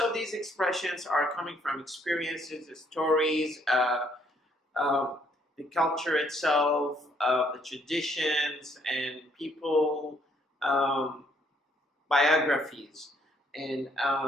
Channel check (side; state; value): both; normal; correlation 0.68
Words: these expressions are coming from experiences, the stories, the culture itself, the traditions, and people, biographies. And